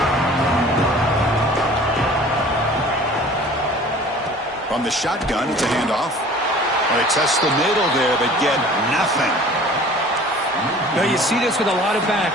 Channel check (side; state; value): both; normal; correlation 0.47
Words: From the shotgun, it's a handoff. Well, they test the middle there, but get nothing. Now, you see this with a lot of